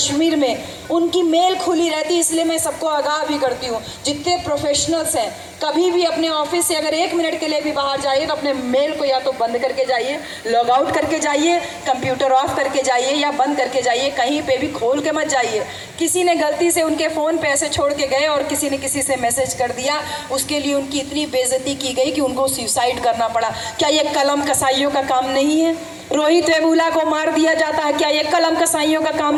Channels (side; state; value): both; identical; correlation 1.00